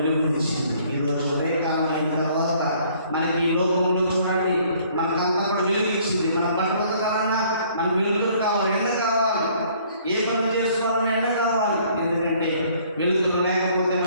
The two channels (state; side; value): inverted; both; correlation -0.60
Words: ఈరోజు ఉదయకాలం అయిన తర్వాత మనకి ఈ లోకంలో చూడండి, మనకంతా కూడా వెలుగు ఇచ్చింది. మన బట్టలు ఉతకాలన్నా మనకు వెలుగులు కావాలి, ఎండ కావాలి, ఏ పనులు చేసుకోవాలన్నా ఎండ కావాలి. ఎందుకంటే వెలుగులు లేకపోతే